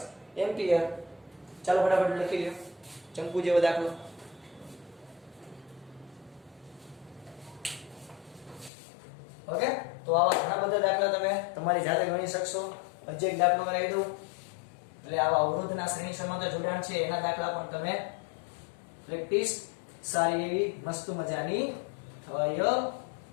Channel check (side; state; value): right; drops out; at 8.7 s